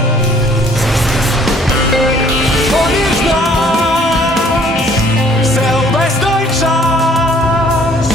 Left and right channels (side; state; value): both; normal; correlation 0.58